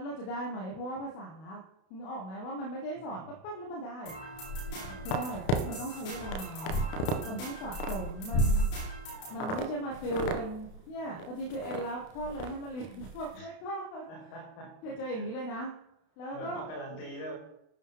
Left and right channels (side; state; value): right; late; 32 ms